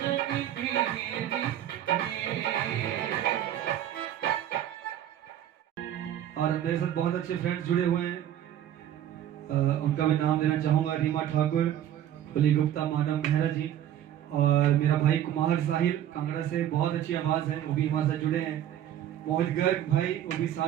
तेरी। और मेरे साथ बहुत अच्छे फ्रेंड्स जुड़े हुए हैं, उनका मैं नाम देना चाहूंगा। रीमा ठाकुर, कुली गुप्ता, मानव मेहरा जी, और मेरा भाई कुमार साहिल कांगड़ा से, बहुत अच्छी आवाज है, वो भी हमारे साथ जुड़े हैं। मोहित गर्ग भाई वो भी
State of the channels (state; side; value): quieter; left; 11.2 dB